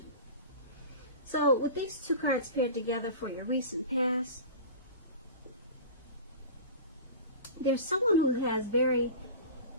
So with these two cards paired together for your recent past, there's someone who has very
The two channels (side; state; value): both; inverted; correlation -0.33